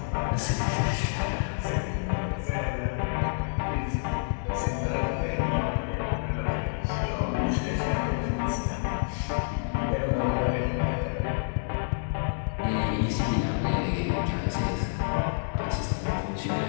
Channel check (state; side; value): silent; right; digital silence